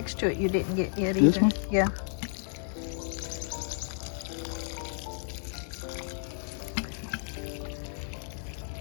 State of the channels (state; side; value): silent; right; 57 dB below the other